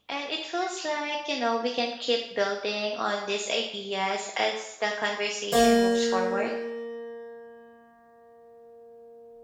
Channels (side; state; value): both; identical; correlation 1.00